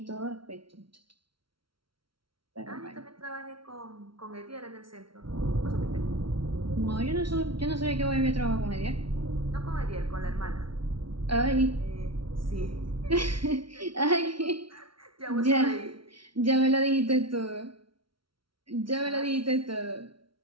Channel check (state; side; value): late; left; 0.74 ms